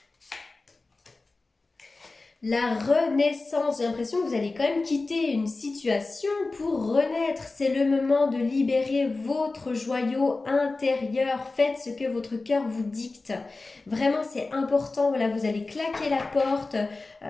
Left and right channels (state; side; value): quieter; right; 3.5 dB